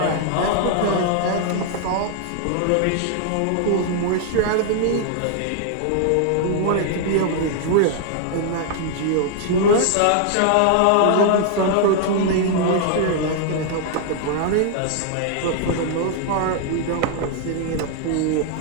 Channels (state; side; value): different; both; correlation 0.00